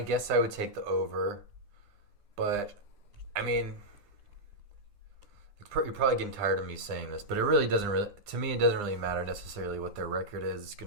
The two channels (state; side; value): late; left; 9.8 ms